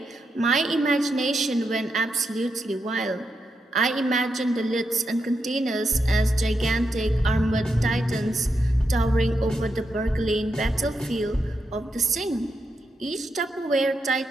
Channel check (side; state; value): both; normal; correlation 0.84